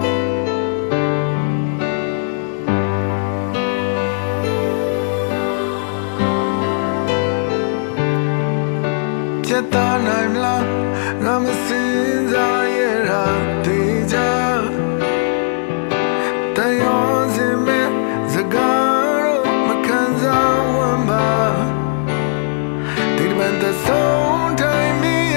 ချက်သားနိုင်မလားငါမစင်စားရတာတေချာတန်ရောစင်မဲ့စကားတော့မခံစားဝမ်းပါဒီတမန်တဲ့ဆုံးတိုင်းမီးရ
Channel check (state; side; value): silent; right; 68 dB below the other